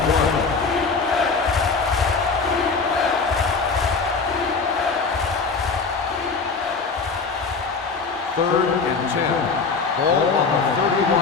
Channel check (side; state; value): right; quieter; 4.7 dB